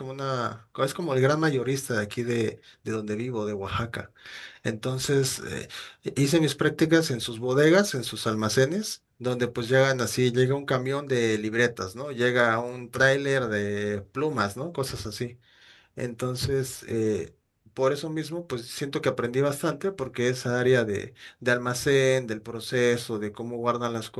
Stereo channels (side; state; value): both; identical; correlation 1.00